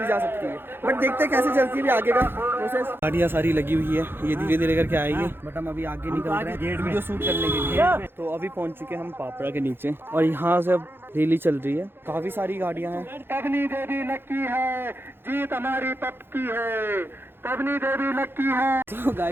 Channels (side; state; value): left; late; 0.10 ms